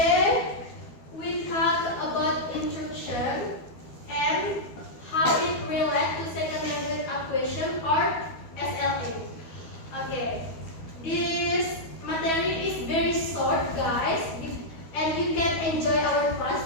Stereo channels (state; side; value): late; right; 12 ms